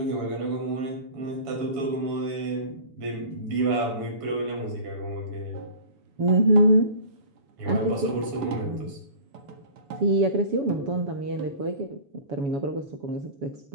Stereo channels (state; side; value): late; left; 7.1 ms